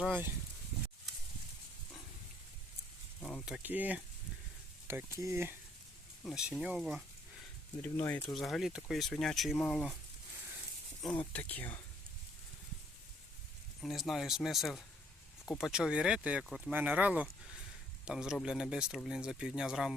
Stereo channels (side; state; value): both; normal; correlation 0.66